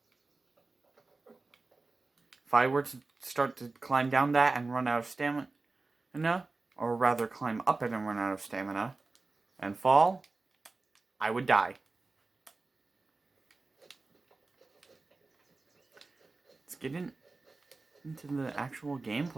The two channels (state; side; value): quieter; left; 3.6 dB